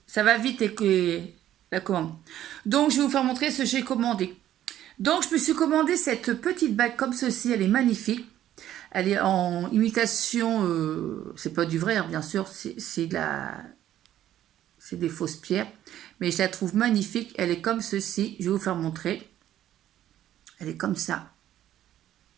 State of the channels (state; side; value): quieter; left; 12.1 dB